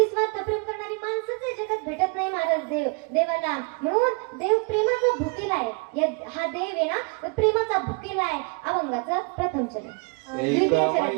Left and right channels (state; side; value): quieter; left; 32.1 dB